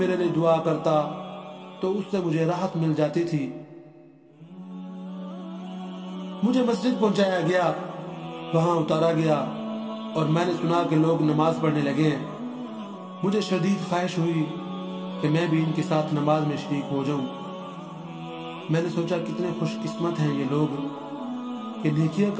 لیے دعا کرتا تو اس سے مجھے راحت مل جاتی تھی۔ مجھے مسجد پہنچایا گیا، وہاں اتارا گیا اور میں نے سنا کہ لوگ نماز پڑھنے لگے ہیں۔ مجھے شدید خواہش ہوئی کہ میں بھی ان کے ساتھ نماز میں شریک ہو جاؤں۔ میں نے سوچا کتنے خوش قسمت ہیں یہ لوگ کہ نیکیاں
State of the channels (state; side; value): identical; both; correlation 1.00